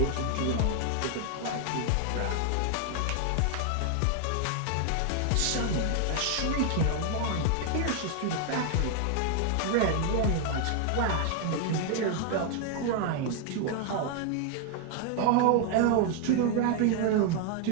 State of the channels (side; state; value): both; different; correlation 0.00